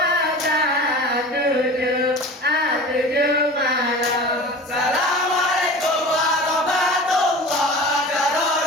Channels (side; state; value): both; normal; correlation 0.36